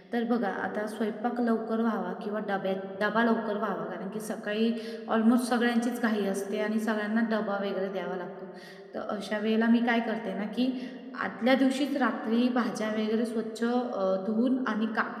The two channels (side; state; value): both; identical; correlation 1.00